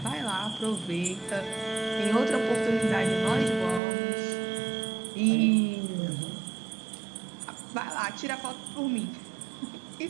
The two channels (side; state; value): left; drops out; at 3.8 s